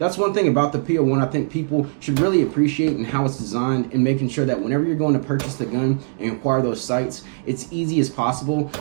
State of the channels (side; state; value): left; silent; digital silence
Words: one thing about the P01 I think people should really appreciate and how it's designed, and making sure that whenever you're going to purchase the gun and acquire those sights, it's easy as possible.